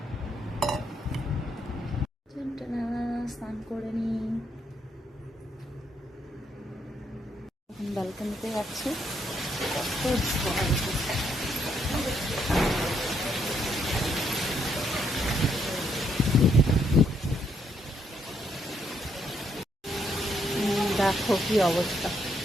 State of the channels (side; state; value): both; normal; correlation 0.74